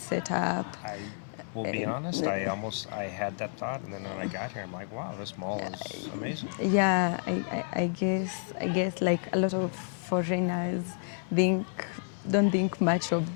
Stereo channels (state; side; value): silent; right; 58 dB below the other